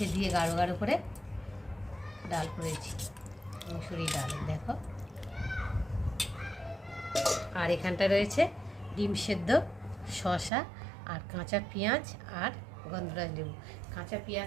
দিয়ে গাঢ় গাঢ় করে ডাল করেছি, মুসুরি ডাল দেখো। আর এখানটা রয়েছে ডিম সেদ্ধ, শসা আর কাঁচা পেঁয়াজ আর গন্ধরাজ লেবু। কাঁচা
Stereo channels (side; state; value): left; drops out; at 10.5 s